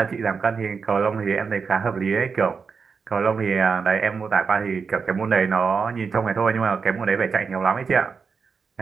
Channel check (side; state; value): left; quieter; 5.4 dB